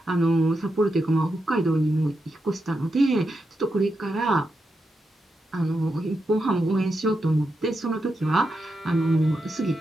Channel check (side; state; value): both; normal; correlation 0.86